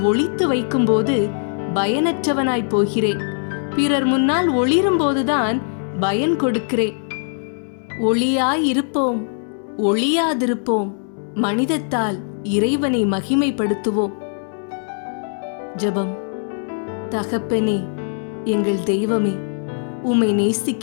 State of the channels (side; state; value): right; silent; digital silence